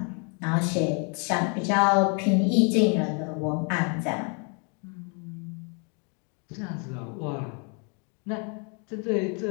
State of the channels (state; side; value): quieter; right; 36.9 dB